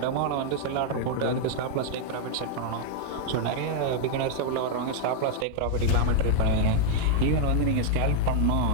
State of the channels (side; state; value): both; different; correlation -0.01